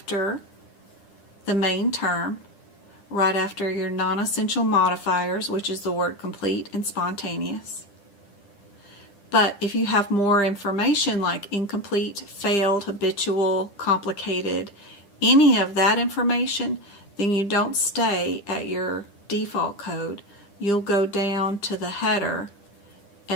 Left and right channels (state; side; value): late; right; 10 ms